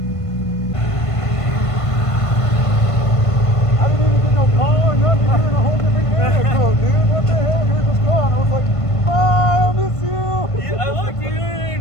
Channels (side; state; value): right; late; 1.5 ms